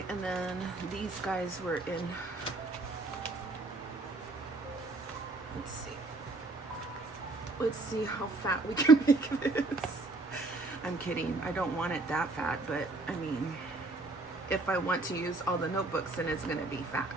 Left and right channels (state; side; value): quieter; left; 3.2 dB